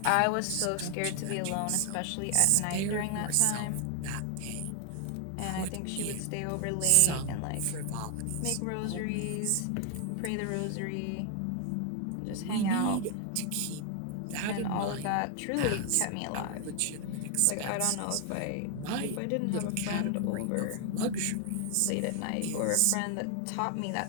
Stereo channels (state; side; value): different; both; correlation 0.00